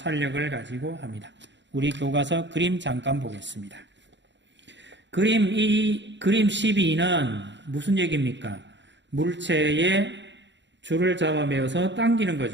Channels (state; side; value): late; left; 0.52 ms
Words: 가지고 합니다. 우리 교과서 그림 잠깐 보겠습니다. 그림 12는 무슨 얘기입니까? 물체의 줄을 잡아 매어서 당기는